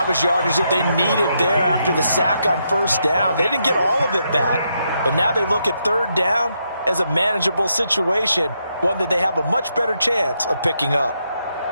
was yardage that they needed there after the sack on first down. They didn't get all of it back, but now they look at third down as a manageable situation, one that they have a much better chance of picking up.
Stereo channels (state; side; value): inverted; both; correlation -0.80